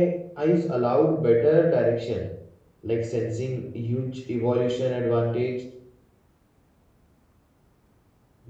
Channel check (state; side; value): identical; both; correlation 1.00